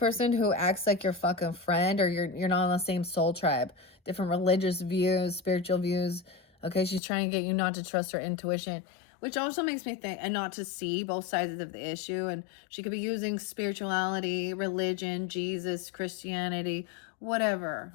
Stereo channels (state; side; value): drops out; right; at 7.0 s